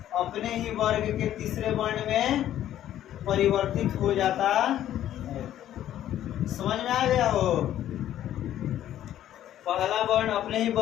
अपने ही वर्ग के तीसरे वर्ण में परिवर्तित हो जाता है। समझ में आ गया हो? पहला वर्ण अपने ही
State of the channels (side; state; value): right; quieter; 12.0 dB